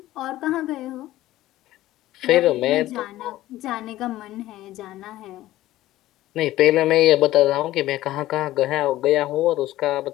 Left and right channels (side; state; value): right; quieter; 15.4 dB